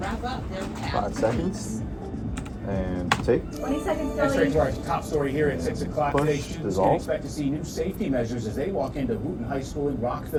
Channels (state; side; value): identical; both; correlation 1.00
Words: up their 5 seconds. And take. 20 seconds, That's straight Kelly. to our top story here at 6 o'clock Push, today. Students can dissolve. expect to see new safety measures as they walk into Wooten High School in